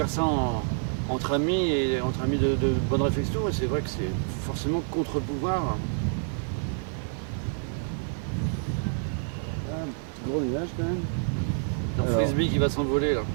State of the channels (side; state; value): left; silent; 60 dB below the other